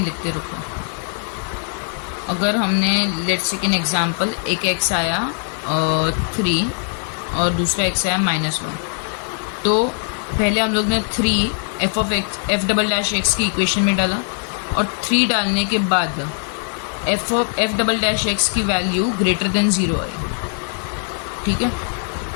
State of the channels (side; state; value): right; silent; 59 dB below the other